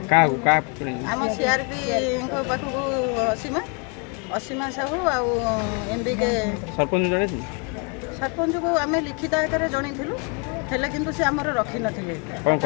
का आम सीआरपी को पाखु असीमा साहू आ एमबीके सरपंच जणे सरपंच को आम लिखित आकार जणीलु हेले किंतु से आमर रखी नथिले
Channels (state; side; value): quieter; right; 34.8 dB